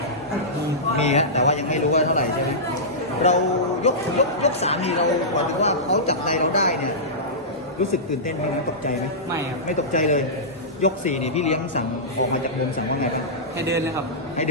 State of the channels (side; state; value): both; normal; correlation -0.16